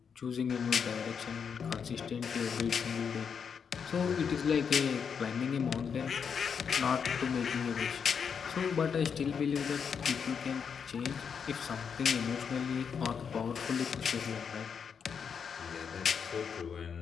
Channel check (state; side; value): quieter; right; 6.7 dB